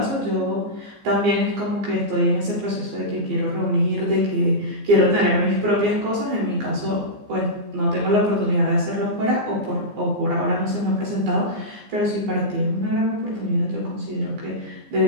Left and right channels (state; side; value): late; left; 15 ms